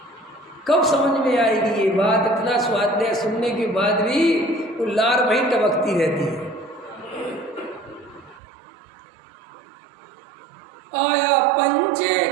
कब समझ में आएगी ये बात? इतना स्वाध्याय सुनने के बाद भी वो लार वहीं टपकती रहती है। आया पंचे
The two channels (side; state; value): left; drops out; at 8.4 s